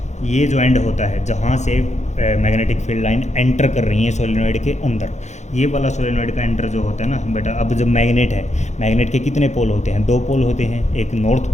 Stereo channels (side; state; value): right; late; 0.33 ms